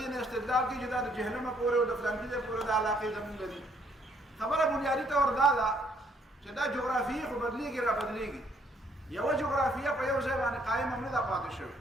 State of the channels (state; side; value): normal; both; correlation 0.67